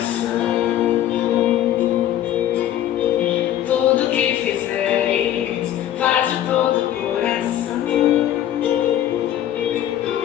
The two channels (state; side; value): quieter; right; 11.9 dB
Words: Tudo que fizeres, faz de todo o coração.